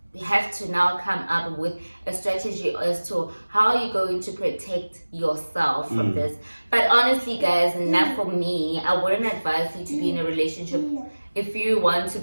you have to now come up with a strategy as to how you're going to protect yourself from this. But honestly, guys, not for me. I wouldn't advise you to be in a relationship if you want to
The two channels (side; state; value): both; inverted; correlation -1.00